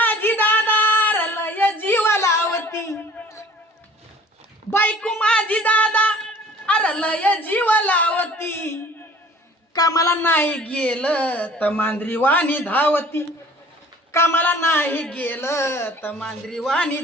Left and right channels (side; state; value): both; normal; correlation 0.50